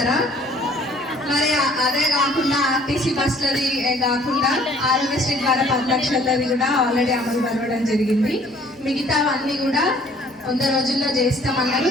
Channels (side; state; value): both; normal; correlation 0.57